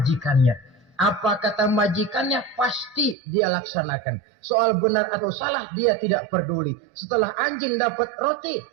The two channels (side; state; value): left; drops out; at 3.2 s